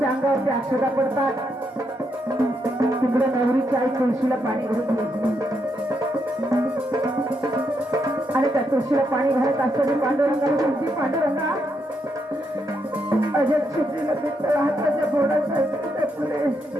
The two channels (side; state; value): both; normal; correlation 0.79